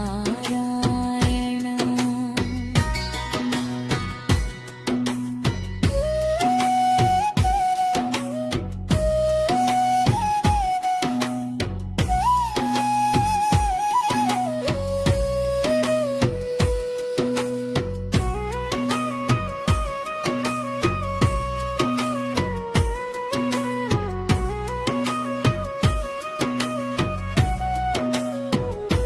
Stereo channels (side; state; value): both; identical; correlation 1.00